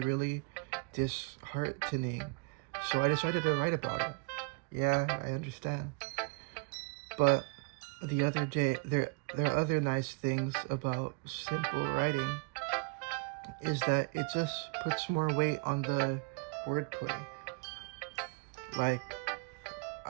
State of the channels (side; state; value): left; quieter; 31.6 dB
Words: really disheartening. so I decided to write about it. Yeah, I understand. But the other day, there are other nice things about simple writing is that it just puts more weight on the wordplay. Like,